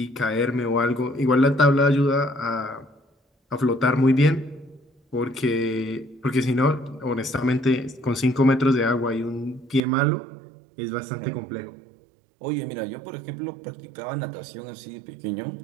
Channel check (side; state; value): left; drops out; at 9.8 s